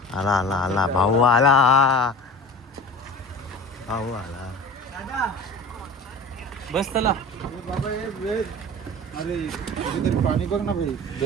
आला आला आला भाऊ आला. भाऊ आला. बस चला. अरे कुठेतरी पाणी बघ ना भाई.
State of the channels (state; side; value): normal; both; correlation 0.37